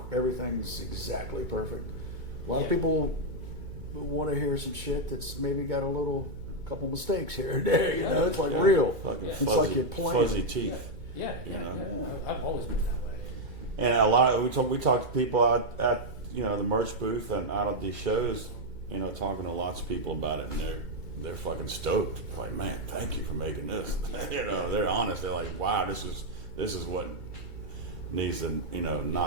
everything's exactly perfect. A lot of people want to hear some shit that's maybe got a couple mistakes here and there. It's like real. It's Fuzzy, like you're playing. fuzzy teeth. Yeah. I've always been that way. And a lot we talk to people out at the merch booth and out of these shows, talking to lots of people about it, and they're fucking stoked. They're like, man, thank you for making this. They're honest. They're like, wow, this is what needs to,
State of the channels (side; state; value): left; late; 2.2 ms